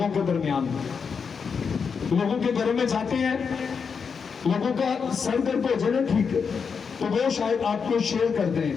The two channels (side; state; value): right; quieter; 5.9 dB